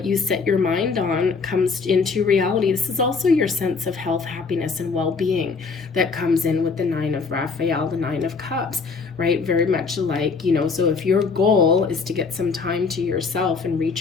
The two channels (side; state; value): right; quieter; 4.8 dB